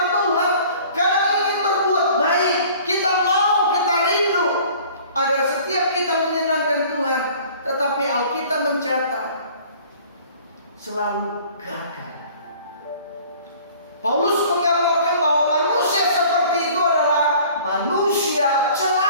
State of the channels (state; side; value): inverted; both; correlation -0.49